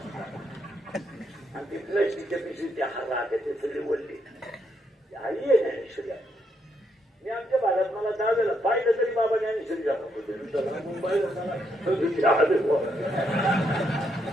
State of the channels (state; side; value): normal; both; correlation 0.77